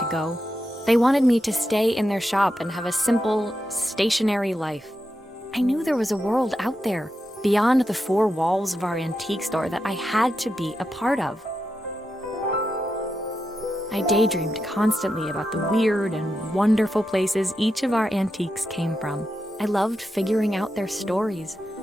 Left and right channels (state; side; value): normal; both; correlation 0.87